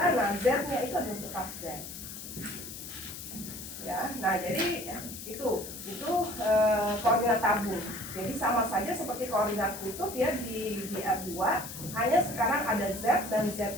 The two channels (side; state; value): left; noise; hiss, 10 dB below the sound